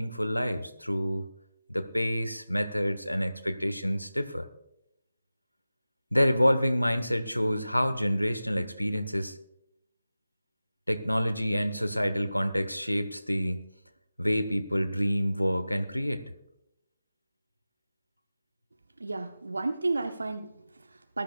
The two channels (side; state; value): both; inverted; correlation -0.96